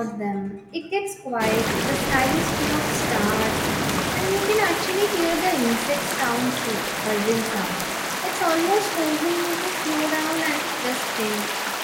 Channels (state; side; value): identical; both; correlation 1.00